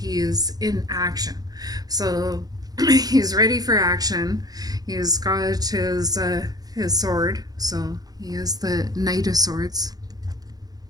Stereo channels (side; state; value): left; late; 0.19 ms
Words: is in action. So he's ready for action. He's got his sword, so he is the Knight of Swords.